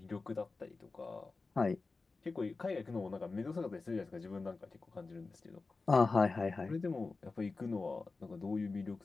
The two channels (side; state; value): right; quieter; 3.9 dB